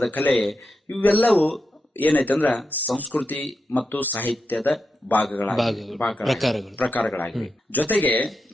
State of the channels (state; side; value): normal; both; correlation 0.87